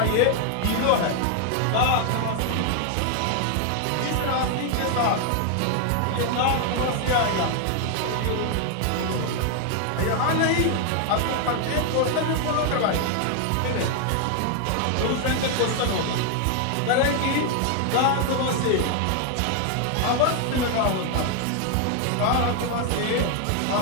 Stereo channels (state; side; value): different; both; correlation 0.00